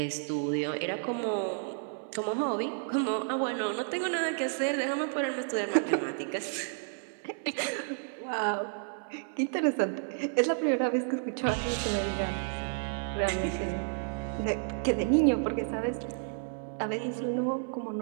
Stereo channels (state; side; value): silent; left; 57 dB below the other